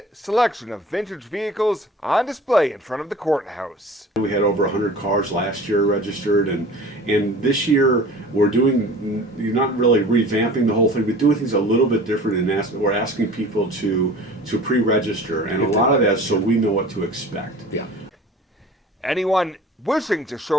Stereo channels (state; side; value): normal; both; correlation 0.42